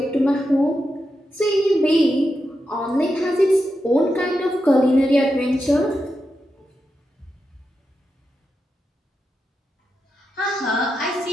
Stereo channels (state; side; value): normal; both; correlation 0.87